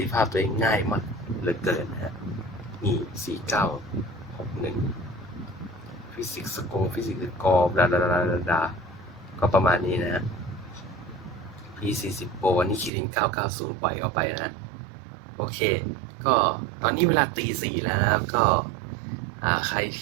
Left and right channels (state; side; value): drops out; left; at 12.9 s